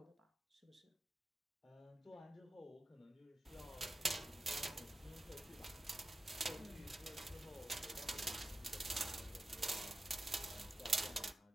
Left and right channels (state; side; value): normal; both; correlation 0.94